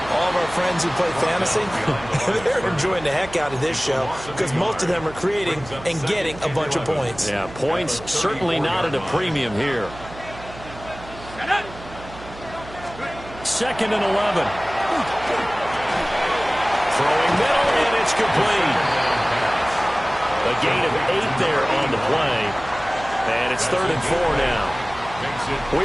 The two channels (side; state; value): right; noise; hum, 16 dB below the sound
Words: all of our friends who play fantasy, they're enjoying the heck out of this show because most of them are creating and getting a bunch of points. Yeah, points certainly not at a premium here. 2nd and 11. Throwing middle, and it's complete. A gain of 8 there on the play. And it's 3rd and 4 now.